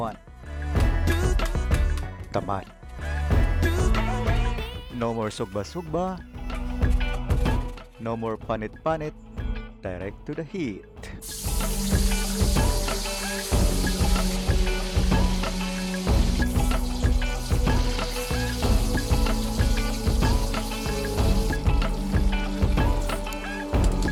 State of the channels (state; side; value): identical; both; correlation 1.00